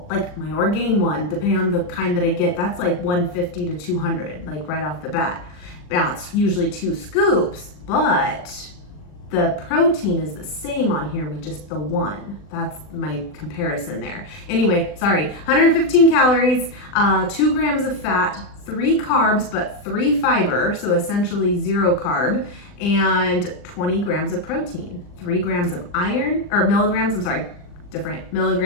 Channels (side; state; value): right; late; 39 ms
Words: like my Orgain one, depending on the kind that I get, that's like 150 to 200, like right off the bat. Now it's usually 2 scoops, but the protein is the same on here with just the 1. That's my comparison there. Anyway, sorry, 115 calories, 2 grams of fat, 3 carbs, but 3 fiber, so essentially 0 carb, and 20 grams of protein, 3 grams of iron, or milligrams, I'm sorry, different